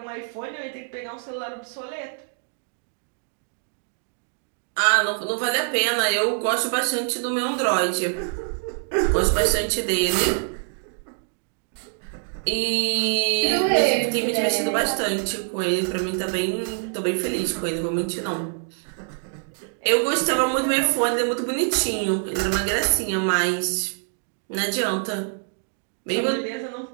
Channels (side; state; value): left; silent; 62 dB below the other